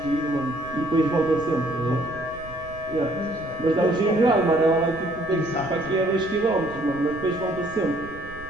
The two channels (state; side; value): noise; right; rumble, 18 dB below the sound